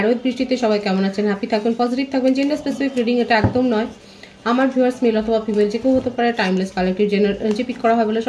উইথ বৃষ্টিতে। সবাই কেমন আছেন? হ্যাপি থাকবেন, পজিটিভ থাকবেন। জেন্ডার স্পেসিফিক রিডিং এটা একদম নয়। আমার ভিউয়ার্স মেল অথবা ফিমেল যে কেউ হতে পারে। টাইমলেস কালেক্টিভ জেনার যে পিক করা হয় বলে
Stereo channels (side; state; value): both; identical; correlation 1.00